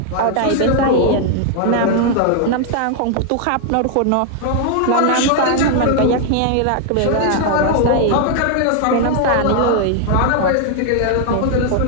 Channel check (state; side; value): different; both; correlation 0.00